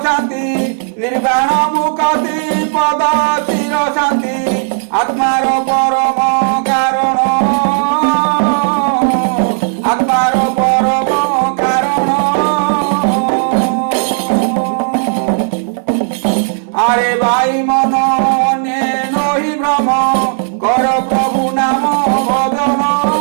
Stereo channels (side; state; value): left; silent; digital silence